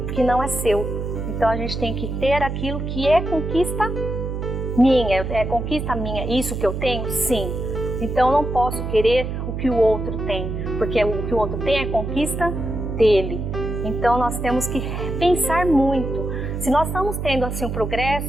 que não é seu. Então a gente tem que ter aquilo que é conquista minha, isso que eu tenho? Sim. Então eu não posso querer o que o outro tem, porque o que o outro tem é conquista dele. Então nós temos que pensar muito. Se nós estamos tendo assim um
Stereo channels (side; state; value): right; noise; hum, 4 dB below the sound